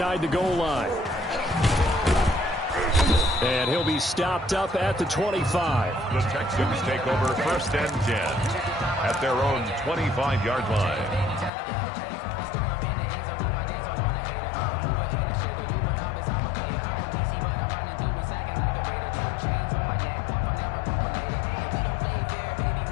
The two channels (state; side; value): drops out; right; at 11.5 s